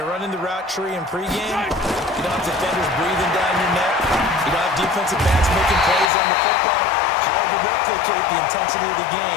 running the route tree in pregame, you don't have defenders breathing down your neck. You don't have defensive backs making plays on the football. Hard to replicate the intensity of the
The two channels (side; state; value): right; drops out; at 6.1 s